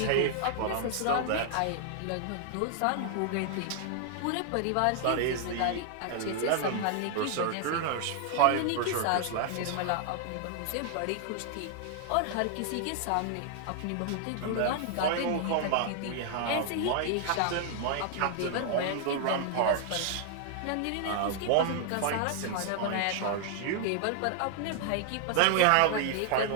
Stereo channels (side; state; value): both; different; correlation 0.00